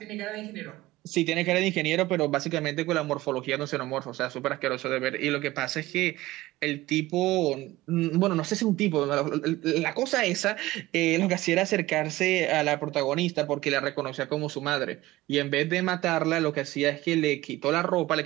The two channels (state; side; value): quieter; left; 17.9 dB